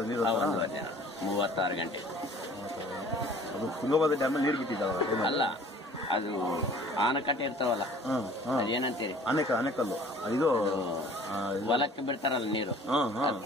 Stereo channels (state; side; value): normal; both; correlation 0.50